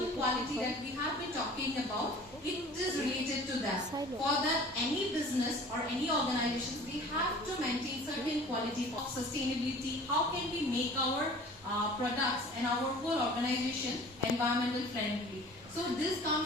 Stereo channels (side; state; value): both; normal; correlation 0.45